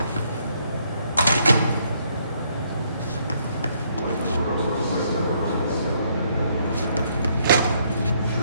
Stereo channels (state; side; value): inverted; both; correlation -0.70